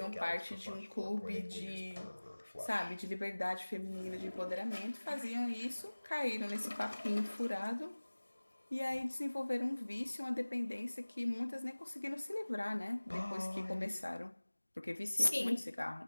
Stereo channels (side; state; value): both; inverted; correlation -1.00